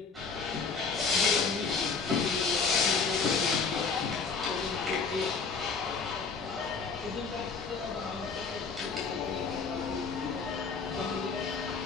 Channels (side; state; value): right; quieter; 5.1 dB